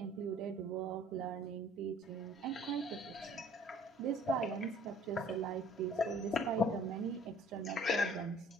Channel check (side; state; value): both; normal; correlation 0.54